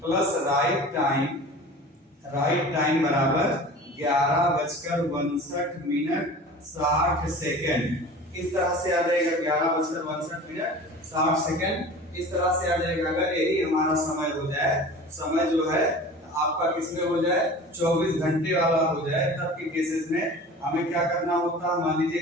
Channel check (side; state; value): both; normal; correlation 0.39